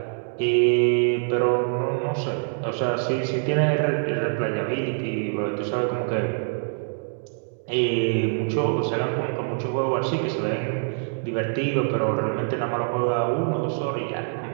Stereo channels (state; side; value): silent; left; 60 dB below the other